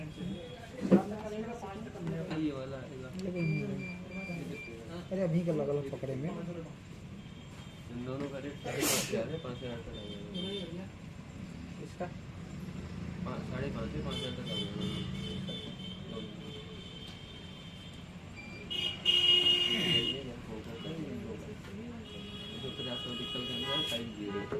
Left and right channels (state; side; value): identical; both; correlation 1.00